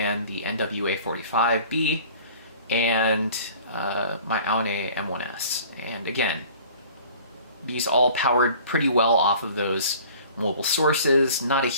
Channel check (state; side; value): inverted; both; correlation -0.47